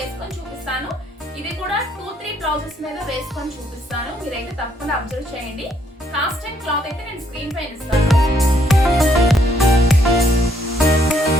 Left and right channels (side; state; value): both; normal; correlation 0.70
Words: వేసుకొని చూపిస్తాను. ఇది కూడా 2-3 బ్లౌజెస్ మీద వేసుకొని చూపిస్తాను, మీరైతే తప్పకుండా అబ్జర్వ్ చేయండి. కాస్ట్ అండ్ క్లాత్ అయితే నేను స్క్రీన్ పైన ఇస్తాను.